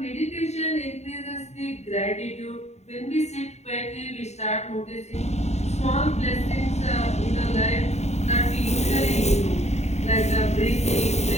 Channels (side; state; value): right; late; 0.32 ms